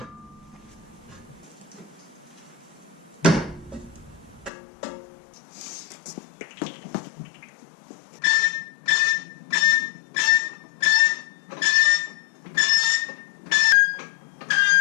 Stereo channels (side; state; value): right; drops out; at 4.5 s